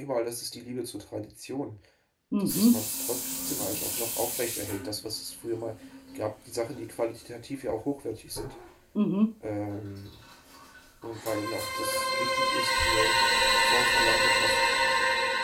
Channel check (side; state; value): both; identical; correlation 1.00